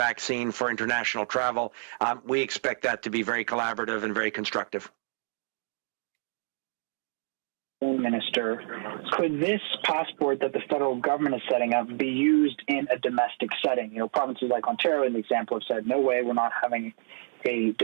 for international travel. We expect that to be very collaborative and very constructive. Minister, could this passport that the federal government is setting up be used in a domestic setting? You know, provinces like Ontario, in the example, have said, no way, we're not having a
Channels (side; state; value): left; silent; digital silence